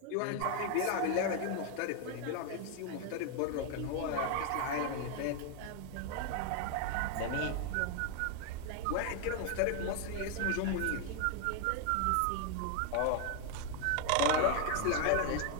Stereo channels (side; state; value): both; different; correlation 0.00